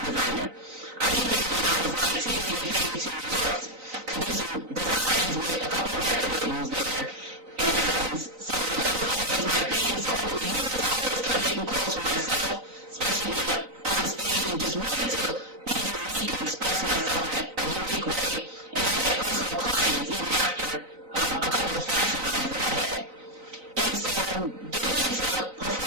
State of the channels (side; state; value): left; late; 3.9 ms